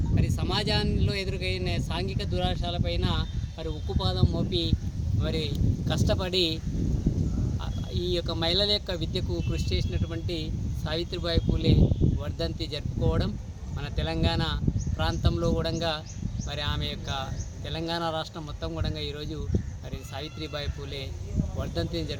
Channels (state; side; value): identical; both; correlation 1.00